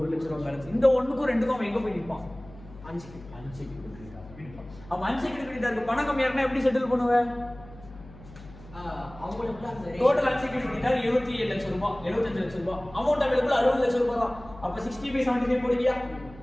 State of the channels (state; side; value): noise; left; hum, 19 dB below the sound